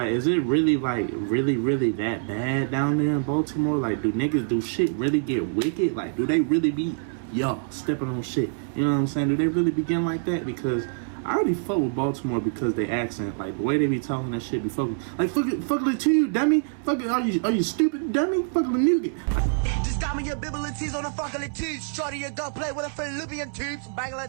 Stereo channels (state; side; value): silent; left; 61 dB below the other